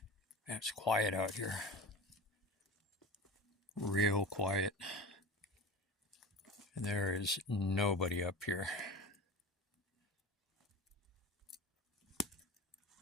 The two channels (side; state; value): both; normal; correlation 0.32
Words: Man, it's quiet out here. Real quiet. And there is nobody up here.